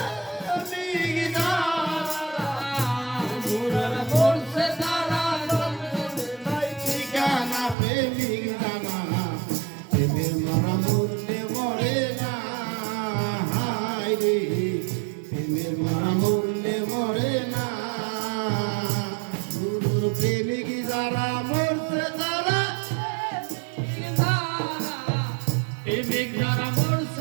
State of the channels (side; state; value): left; drops out; at 7.8 s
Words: প্রেমিক যারা গুরুর মরছে তারা নাই ঠিকানা প্রেমিক যারা প্রেমের মরা মরলে মরে না হায় রে প্রেমের মরা মরলে মরে না গুরুর প্রেমিক যারা মরছে তারা প্রেমিক যারা